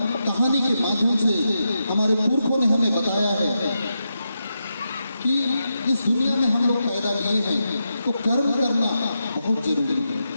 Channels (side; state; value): both; inverted; correlation -0.86